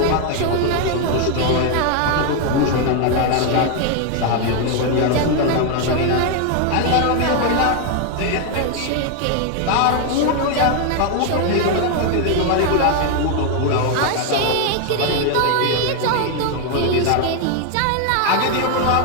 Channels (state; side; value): different; both; correlation 0.01